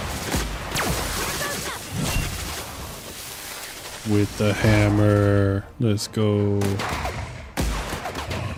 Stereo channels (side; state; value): both; identical; correlation 1.00